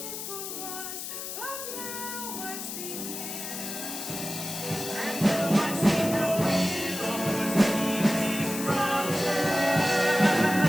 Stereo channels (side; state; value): left; noise; hiss, 7 dB below the sound